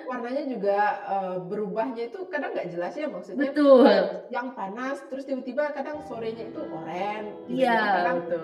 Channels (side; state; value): both; identical; correlation 1.00